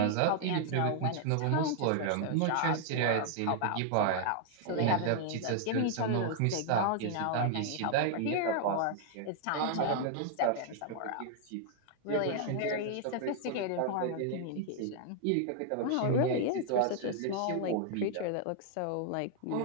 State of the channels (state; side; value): different; both; correlation 0.00